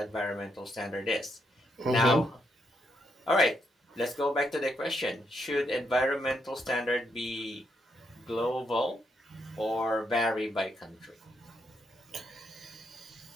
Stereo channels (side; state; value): both; normal; correlation 0.78